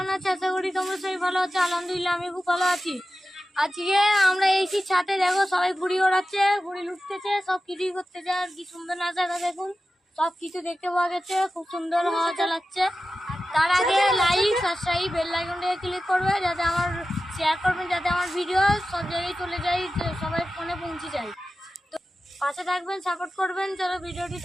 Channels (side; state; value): both; normal; correlation 0.93